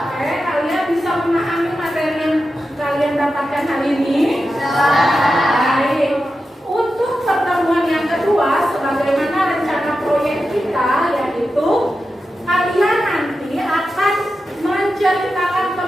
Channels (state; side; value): normal; both; correlation 0.91